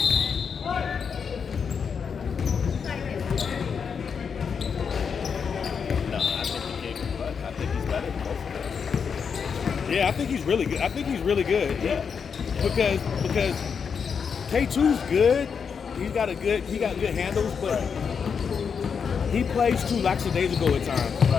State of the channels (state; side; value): quieter; right; 6.4 dB